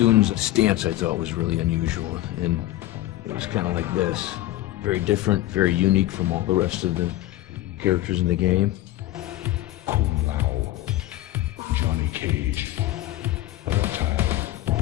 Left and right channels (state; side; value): quieter; right; 15.5 dB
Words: stance I thought was really unusual, and it was kind of like this. Very different, very unique from all the rest of the characters in the game. Kung Lao, Johnny Cage, Mortal.